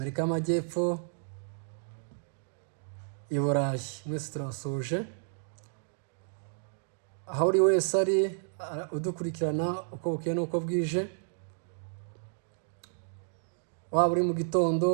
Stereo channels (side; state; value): left; silent; digital silence